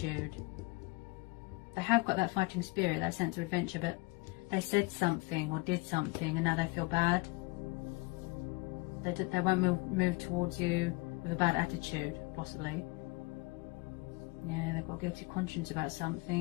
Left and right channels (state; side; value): quieter; right; 25.6 dB